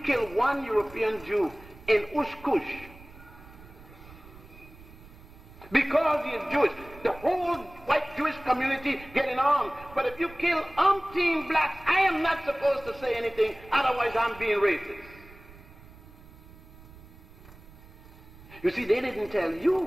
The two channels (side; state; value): right; noise; rumble, 20 dB below the sound